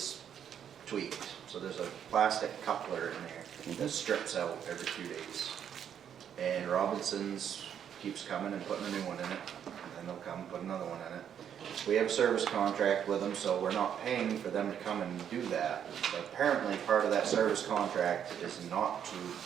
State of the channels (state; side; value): quieter; left; 8.9 dB